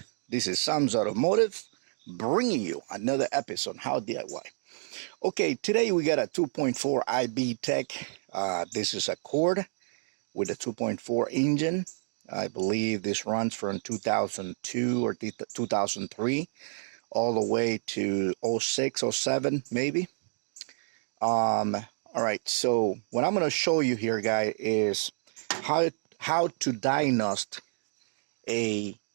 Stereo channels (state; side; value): silent; left; digital silence